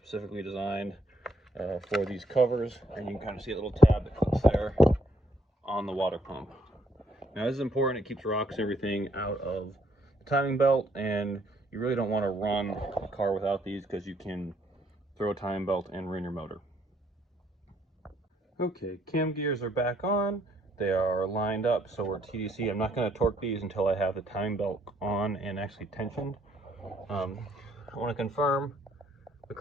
designed for these covers, and you can kind of see a little tab that clips there on the water pump. Now this is important. It keeps rocks and everything out of the timing belt, and you really don't want to run a car without these because you can throw a timing belt and ruin your motor. Okay, cam gears are back on. They are lined up, so we're TDC. I'm not going to torque these until I have the timing belt on and actually tensioned. I want to confirm the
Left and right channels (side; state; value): both; normal; correlation 0.70